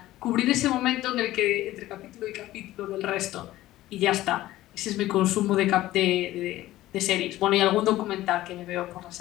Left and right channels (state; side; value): quieter; right; 15.6 dB